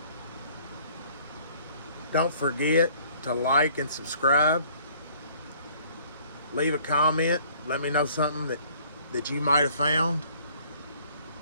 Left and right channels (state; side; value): inverted; both; correlation -0.57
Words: Don't forget to like and subscribe. Leave a comment. Let me know something that you might have found,